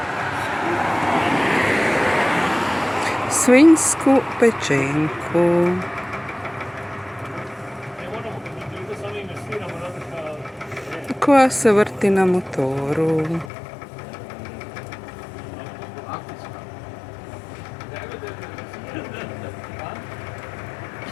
Svinjsku pečenku. Koja se vrti na motoru.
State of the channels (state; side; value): drops out; right; at 13.5 s